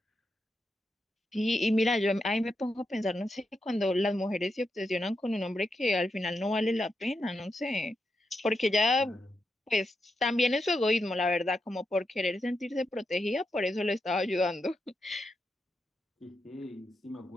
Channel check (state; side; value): normal; both; correlation 0.85